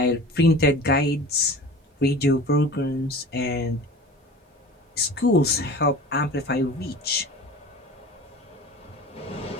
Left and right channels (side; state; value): both; normal; correlation 0.38